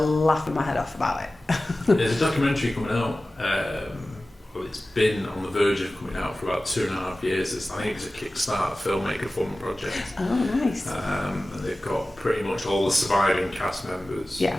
my head off about it. There's a documentary coming out. Well, it's been on the verge of coming out for about 2.5 years. I think it's a Kickstarter filmmaker fund project. Oh, nice. And they've got pretty much all the surviving cast members in it.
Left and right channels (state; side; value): normal; both; correlation 0.96